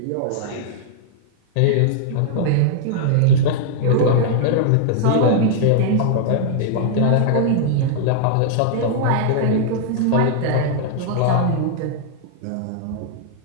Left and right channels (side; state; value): both; different; correlation -0.01